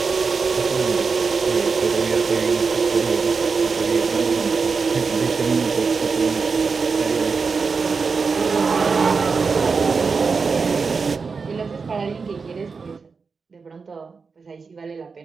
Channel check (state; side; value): quieter; left; 4.9 dB